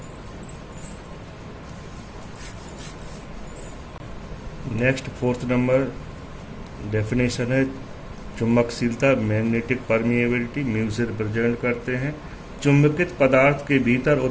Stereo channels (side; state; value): both; identical; correlation 1.00